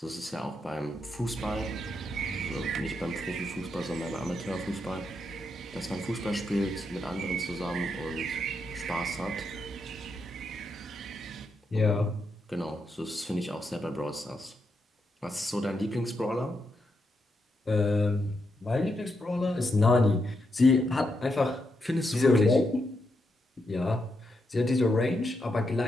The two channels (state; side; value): normal; both; correlation 0.82